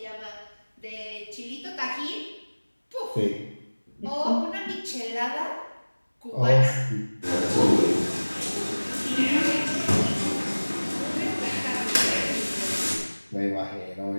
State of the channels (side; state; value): both; inverted; correlation -1.00